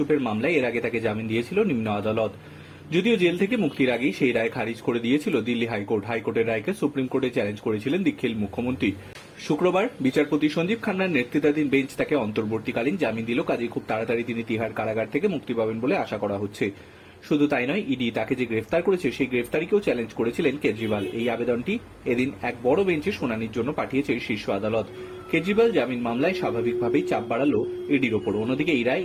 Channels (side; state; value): both; identical; correlation 1.00